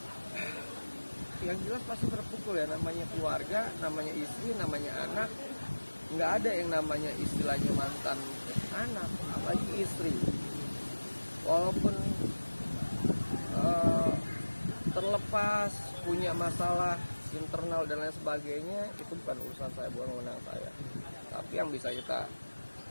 Yang jelas pasti terpukul ya, namanya keluarga, namanya istri, namanya anak. Nggak ada yang namanya istilahnya mantan anak, apalagi istri. Walaupun terlepas punya masalah internal dan lain sebagainya, itu bukan urusan saya, bukan wewenang saya. Tapi yang bisa kita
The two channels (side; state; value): both; inverted; correlation -1.00